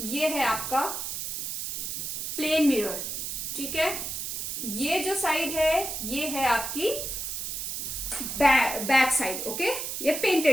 ये है आपका प्लेन मिरर, ठीक है, ये जो साइड है ये है आपकी बैक साइड, ओके, ये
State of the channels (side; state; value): right; noise; hiss, 4 dB below the sound